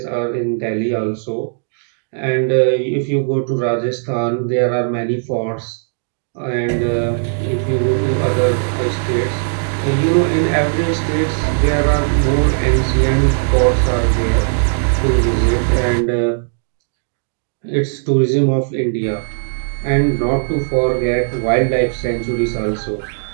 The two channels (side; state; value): left; silent; digital silence